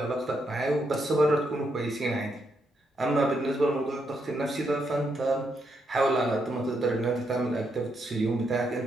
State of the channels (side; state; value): both; normal; correlation 0.79